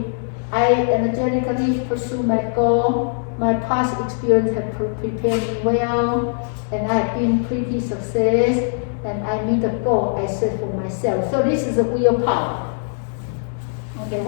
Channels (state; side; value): silent; right; digital silence